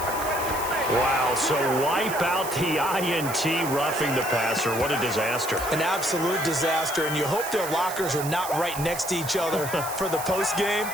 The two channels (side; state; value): right; noise; hiss, 9 dB below the sound